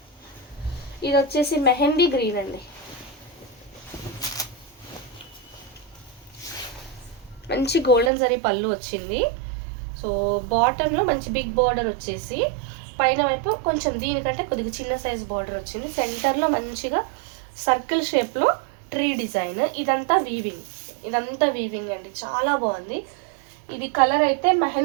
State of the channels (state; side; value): drops out; left; at 8.1 s